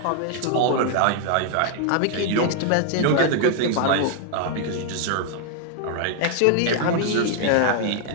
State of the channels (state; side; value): different; both; correlation 0.00